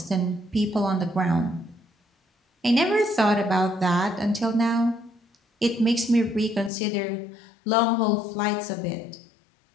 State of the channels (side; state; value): right; drops out; at 6.7 s